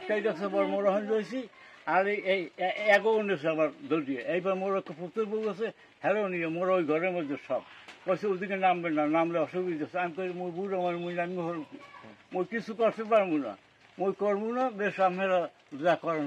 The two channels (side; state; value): both; identical; correlation 1.00